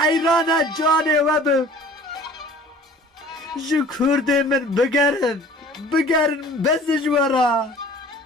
جانه وبم جو کرده من بگرن بس جوارا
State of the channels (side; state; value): both; normal; correlation 0.48